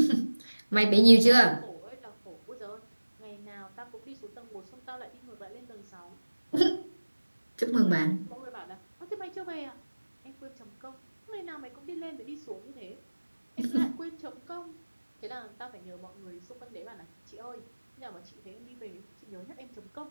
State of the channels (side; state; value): both; inverted; correlation -1.00